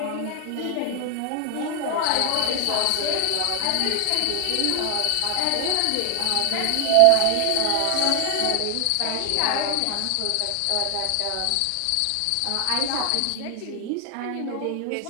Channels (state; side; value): different; both; correlation 0.00